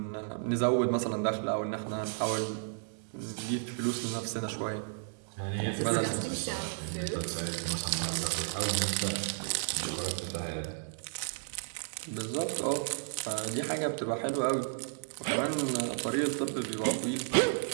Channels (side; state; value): left; silent; 56 dB below the other